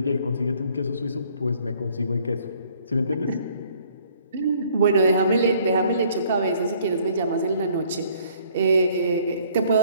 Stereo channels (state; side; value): inverted; both; correlation -0.60